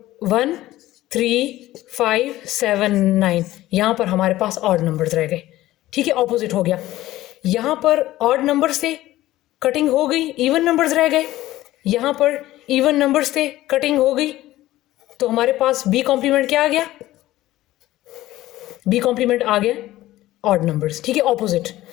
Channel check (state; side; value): quieter; right; 15.8 dB